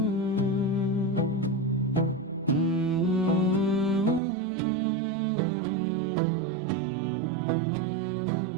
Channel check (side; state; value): left; drops out; at 4.2 s